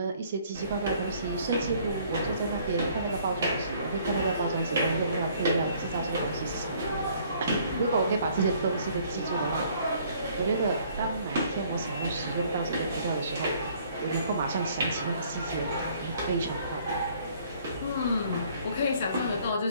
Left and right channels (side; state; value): both; inverted; correlation -0.60